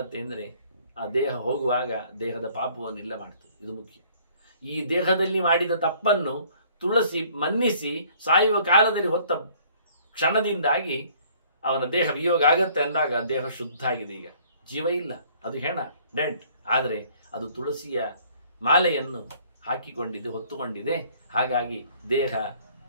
ಅಂದರೆ, ಆ ದೇಹ ಹೋಗುವಾಗ ದೇಹದ ಪಾಪವನ್ನು ಇಲ್ಲ ಮಾಡ್ತದೆ. ಇದು ಮುಖ್ಯ. ಈ ದೇಹದಲ್ಲಿ ಮಾಡಿದ ತಪ್ಪನ್ನು ತುಳಸಿ ಮನ್ನಿಸಿ ಸಾಯುವ ಕಾಲದಲ್ಲಿ ಹೊತ್ತ ಕ್ಷಣದಿಂದಾಗಿ ಅವನ ದೇಹ ವಿಯೋಗ ಆಗತ್ತೆ ಅಂದಾಗ ದೇಹ ಶುದ್ಧ ಆಗಿದೆ. ಈಗ ಜೀವ ಇಲ್ಲ, ಅದು ಹೆಣ, ಡೆಂಟ್. ಆದರೆ ಅದು ತುಳಸಿಯ ಮಾಲೆಯನ್ನು ಹಾಕಿಕೊಂಡಿದೆ, ಹೊತ್ತುಕೊಂಡಿದೆ. ಹಾಗಾಗಿ ದೇಹ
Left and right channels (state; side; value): inverted; both; correlation -0.58